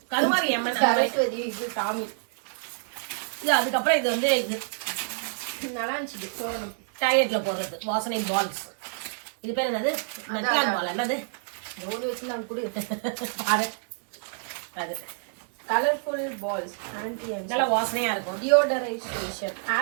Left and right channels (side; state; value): left; silent; digital silence